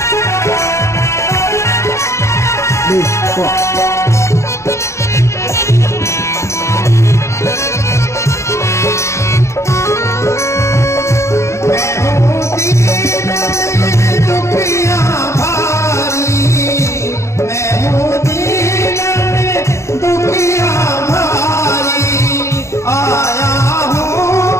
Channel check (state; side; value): late; right; 0.14 ms